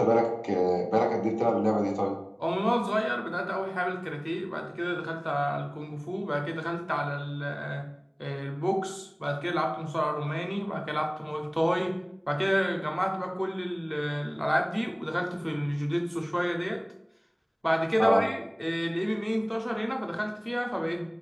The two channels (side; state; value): both; identical; correlation 1.00